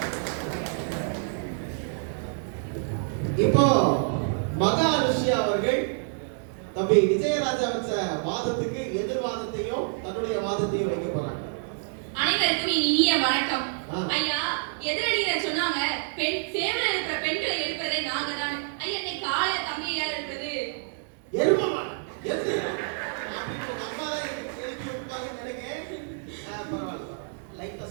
இப்போ மகா அனுஷ்யா அவர்கள் தம்பி விஜயராஜா வச்ச வாதத்துக்கு எதிர்வாதத்தையும் தன்னுடைய வாதத்தையும் வைக்க போறாங்க. அனைவருக்கும் இனிய வணக்கம். ஐயா, எதிரணியினர் சொன்னாங்க பெண் சேவல இருக்கிற பெண்களை எழுப்பதே நாங்க தான். ஐயா, நீ கால தம்பியா இருக்கிறது எருமமான எது அப்படி ஒரு அம்மா தான் எழுப்பி விட்டாங்கன்னு நினைக்கிறேன். பரவாயில்ல, லைட்டா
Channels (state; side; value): silent; left; digital silence